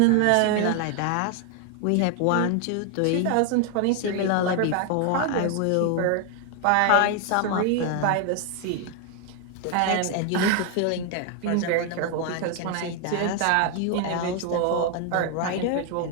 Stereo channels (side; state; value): both; different; correlation 0.00